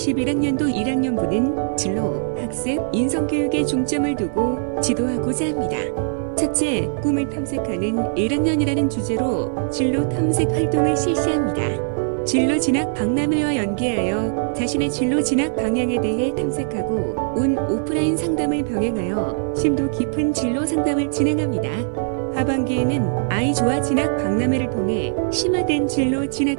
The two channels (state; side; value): silent; left; digital silence